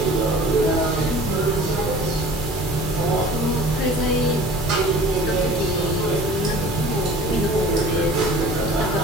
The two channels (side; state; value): both; normal; correlation 0.45